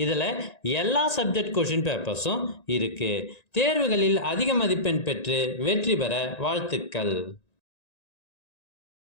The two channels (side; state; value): right; late; 1.9 ms